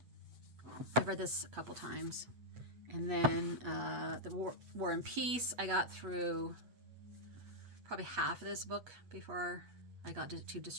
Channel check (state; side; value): late; left; 8.4 ms